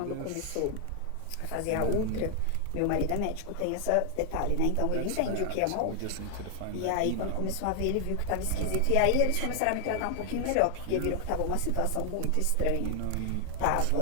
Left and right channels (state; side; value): different; both; correlation 0.00